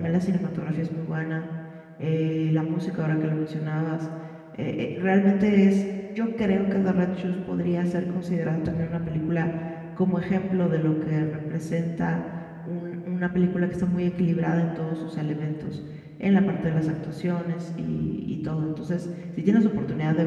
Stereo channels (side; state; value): both; identical; correlation 1.00